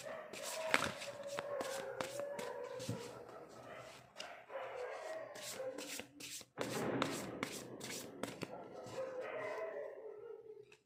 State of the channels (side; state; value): both; identical; correlation 1.00